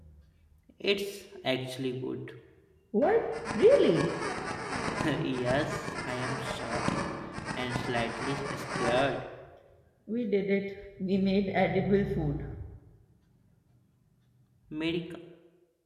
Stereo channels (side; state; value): both; identical; correlation 1.00